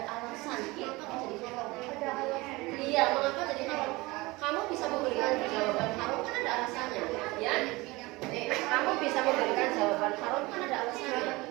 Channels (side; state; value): left; quieter; 22.3 dB